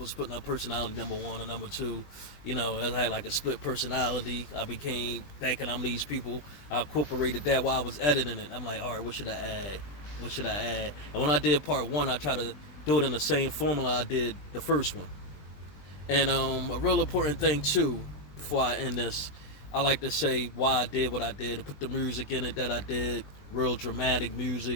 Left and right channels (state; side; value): late; right; 20 ms